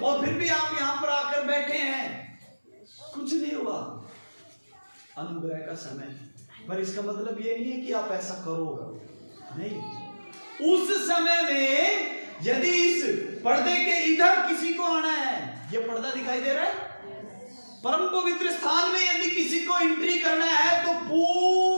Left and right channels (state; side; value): inverted; both; correlation -1.00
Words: फिर भी आप यहां पर आकर बैठे हैं, कुछ नहीं हुआ। अनुग्रह का समय, पर इसका मतलब ये नहीं है कि आप ऐसा करो, नहीं। उस समय में यदि इस पर्दे के इधर किसी को आना है, ये पर्दा दिखाई दे रहा है, परम पवित्र स्थान में यदि किसी को एंट्री करना है तो